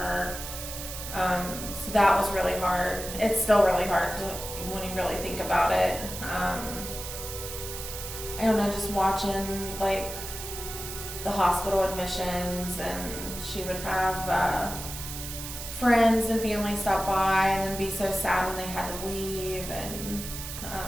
So that was really hard. It's still really hard when you really think about it. I don't know, just watching like the hospital admissions, and she would have friends and family stop by and then be so sad when they had to leave, and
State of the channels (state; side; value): noise; right; hiss, 8 dB below the sound